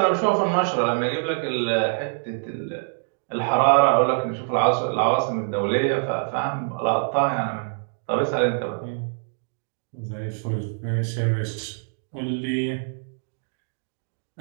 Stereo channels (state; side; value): silent; left; digital silence